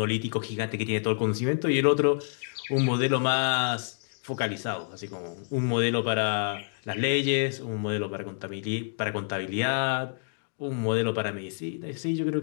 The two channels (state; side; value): silent; right; digital silence